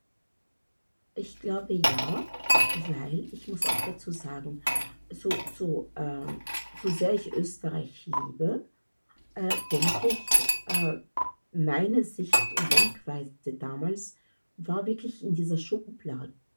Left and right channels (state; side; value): inverted; both; correlation -1.00